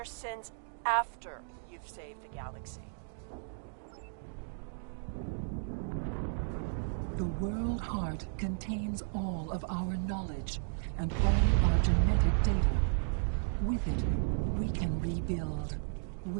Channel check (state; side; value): silent; left; digital silence